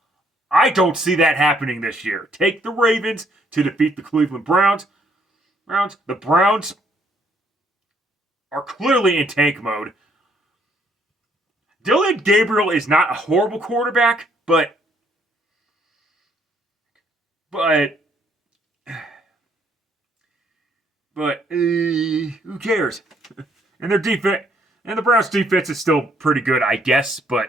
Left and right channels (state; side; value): normal; both; correlation 0.68